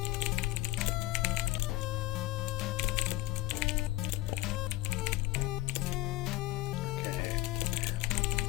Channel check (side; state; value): right; quieter; 18.5 dB